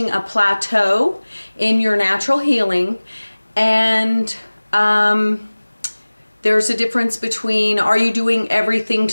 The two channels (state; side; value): inverted; both; correlation -1.00